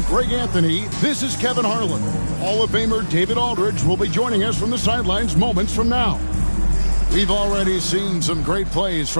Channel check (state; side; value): inverted; both; correlation -1.00